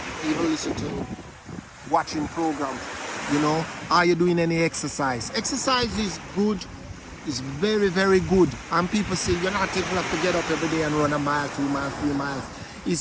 Even listen to watching programs, you know, are you doing any exercise? Exercise is good, it's very, very good. And people say you're not able to get up every day and run a mile, 2 miles, 3 miles.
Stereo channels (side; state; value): both; identical; correlation 1.00